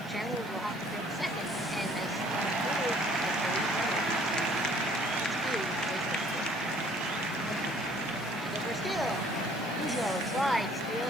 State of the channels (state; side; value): normal; both; correlation 0.57